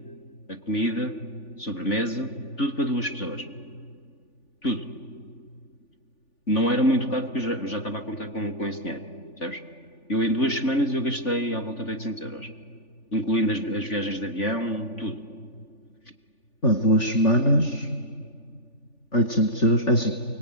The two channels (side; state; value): right; late; 3.5 ms